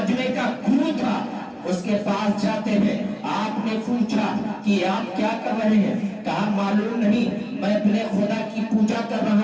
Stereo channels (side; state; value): both; identical; correlation 1.00